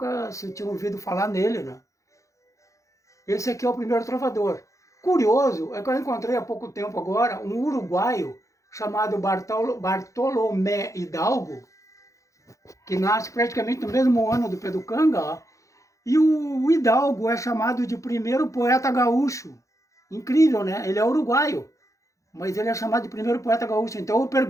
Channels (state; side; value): late; right; 0.15 ms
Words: se tinha ouvido falar nele, né? Esse aqui é o primeiro trovador. Curioso é que eu encontrei há pouco tempo agora um uruguaio chamado Bartolomé Hidalgo, que nasce praticamente no mesmo ano do Pedro Canga, ó, e o Hidalgo é chamado de primeiro poeta gaúcho. Incrível, né? Ele é uruguaio, mas ele é chamado de primeiro poeta gaúcho. Então eu